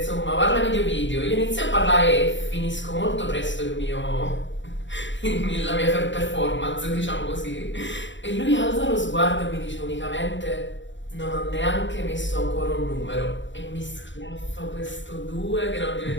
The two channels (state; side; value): late; right; 0.54 ms